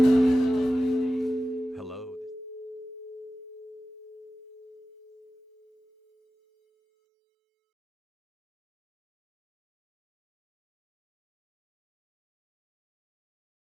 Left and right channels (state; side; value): normal; both; correlation 0.94